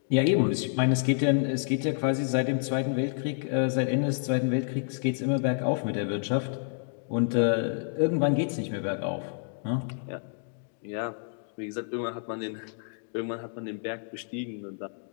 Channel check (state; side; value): silent; right; digital silence